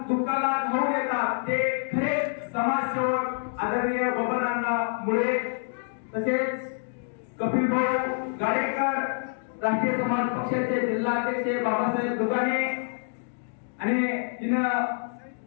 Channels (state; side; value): silent; right; digital silence